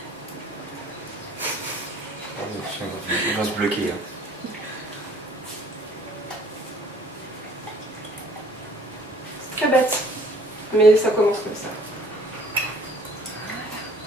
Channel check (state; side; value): normal; both; correlation 0.56